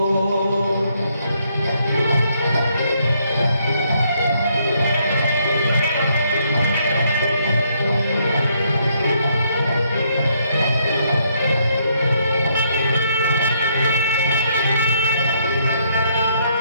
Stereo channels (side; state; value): both; inverted; correlation -0.71